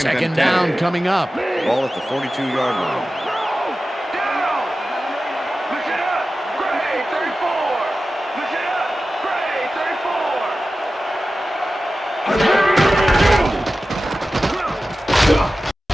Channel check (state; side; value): normal; both; correlation 0.94